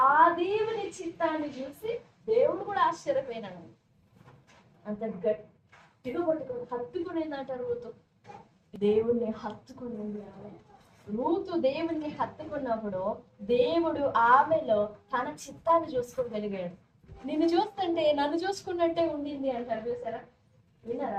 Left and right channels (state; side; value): identical; both; correlation 1.00